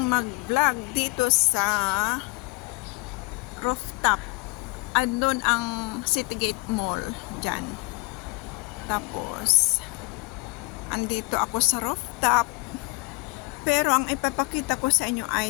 mag-vlog dito sa rooftop. Andun ang Citygate Mall dyan. Tapos andito ako sa rooftop, pero ang ipapakita ko sa inyo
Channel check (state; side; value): quieter; right; 26.3 dB